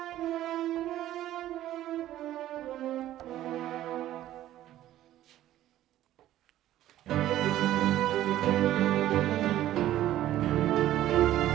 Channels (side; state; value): left; quieter; 13.5 dB